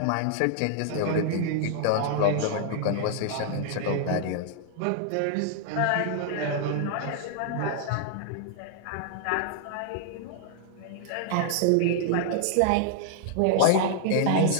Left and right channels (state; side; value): different; both; correlation 0.00